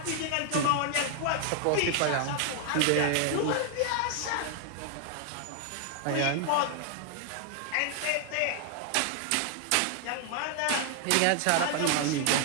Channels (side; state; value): both; different; correlation 0.00